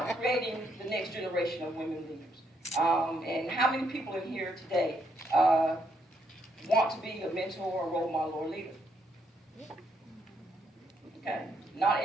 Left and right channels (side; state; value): both; normal; correlation 0.75